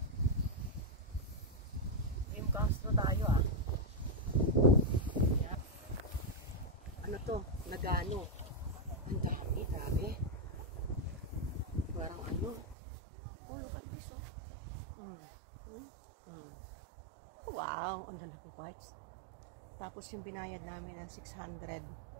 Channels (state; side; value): drops out; left; at 12.8 s